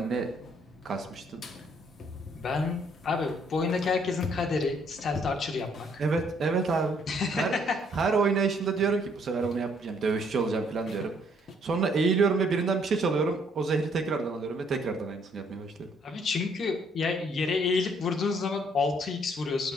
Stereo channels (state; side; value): normal; both; correlation 0.66